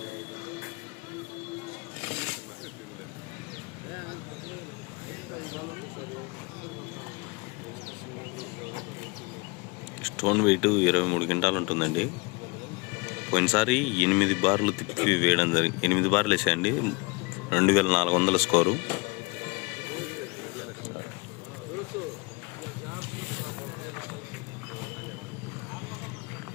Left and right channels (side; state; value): right; quieter; 27.7 dB